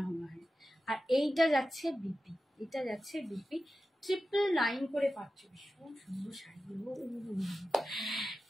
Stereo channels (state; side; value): normal; both; correlation 0.93